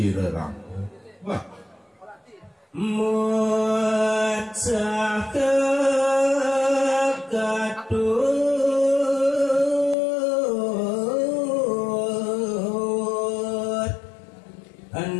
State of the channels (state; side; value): drops out; right; at 10.0 s